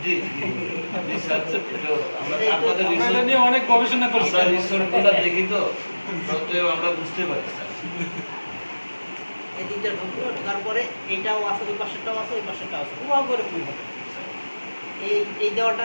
জি জি স্যার, তো আমরা আপনাদের আমরা এটা রিসোর্ট নিয়ে অনেক গবেষণা করছি। আমরা রিসোর্টগুলো দেখি তো সত্ত্বেও আমরা বুঝতে পারি স্যার। এই দিকটা ঢুকলো, ঢোকার পরে এইটাও আছে, ওই পাশেরটাও আছে, ওই পাশেরটাও আছে, পুরো করে ফুল হবে। এই দেওয়াটা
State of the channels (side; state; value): both; inverted; correlation -1.00